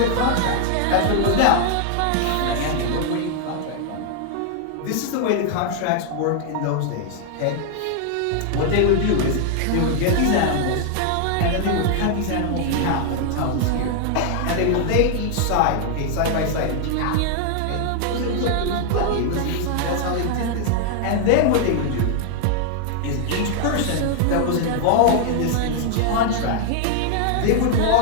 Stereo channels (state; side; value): different; both; correlation 0.00